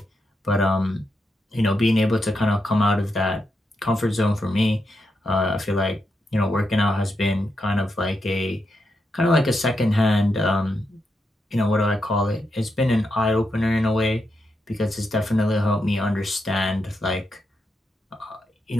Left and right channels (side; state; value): both; normal; correlation 0.84